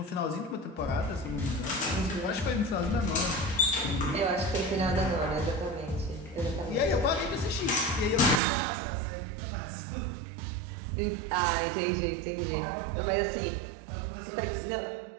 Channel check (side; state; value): left; drops out; at 8.4 s